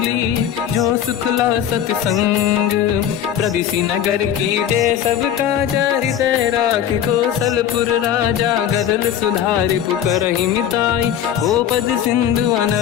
जो सुखला सतसंग। प्रदिशि नगर की जय सब काजा हृदय राख कौशलपुर राजा। गदल सुधारि पुकरहि मिताई हो पद सिंधु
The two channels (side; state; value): right; quieter; 9.9 dB